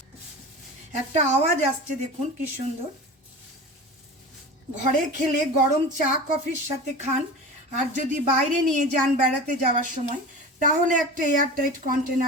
একটা আওয়াজ আসছে দেখুন কি সুন্দর। ঘরে খেলে গরম চা কফির সাথে খান, আর যদি বাইরে নিয়ে যান বেড়াতে যাওয়ার সময়, তাহলে একটা এয়ারটাইট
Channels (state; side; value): normal; both; correlation 0.33